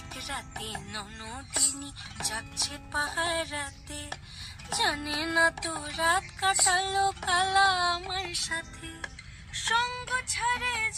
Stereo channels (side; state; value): both; identical; correlation 1.00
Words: রাতে ননদিনী যাচ্ছে পাহারাতে, জানে না তো রাত কাটালো কালা আমার সাথে। সঙ্গ ছাড়ে